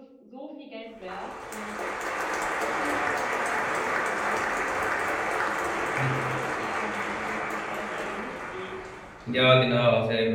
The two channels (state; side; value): identical; both; correlation 1.00